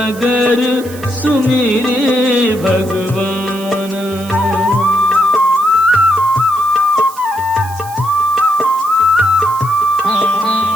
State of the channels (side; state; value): right; noise; hiss, 18 dB below the sound